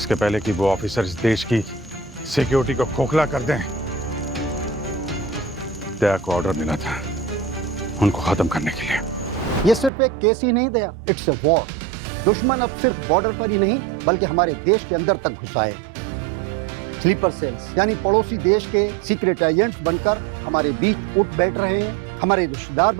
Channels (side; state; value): left; drops out; at 9.9 s